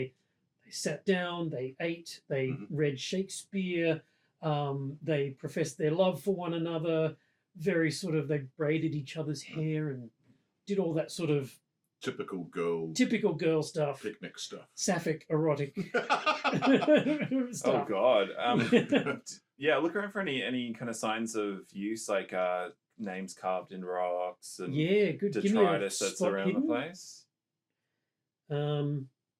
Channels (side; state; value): both; identical; correlation 1.00